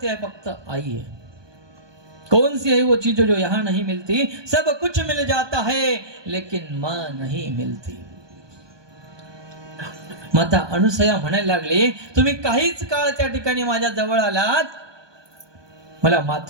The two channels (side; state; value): left; late; 1.2 ms